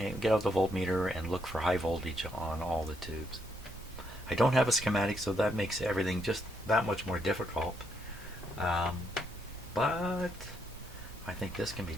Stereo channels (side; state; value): both; normal; correlation 0.75